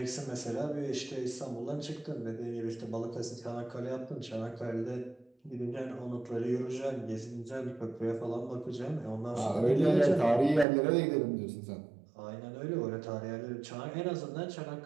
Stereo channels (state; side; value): drops out; left; at 10.7 s